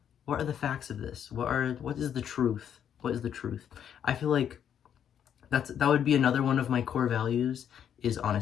what are the facts of this? What is the truth? What is the truth? I feel like that would be another one of my core values is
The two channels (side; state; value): right; quieter; 9.0 dB